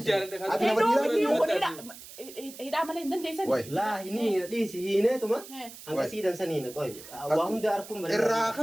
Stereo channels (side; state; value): right; noise; hiss, 16 dB below the sound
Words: hidhaa malee hin dandeessan laa hini dhiisi hiineetuma hanga siidan saniina qoy waa hunda arkuun bare irraa